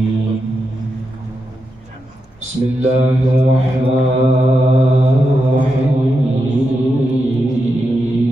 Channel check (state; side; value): normal; both; correlation 0.86